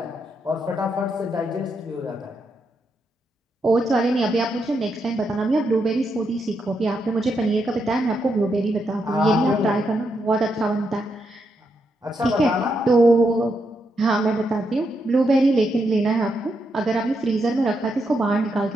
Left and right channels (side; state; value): both; normal; correlation 0.81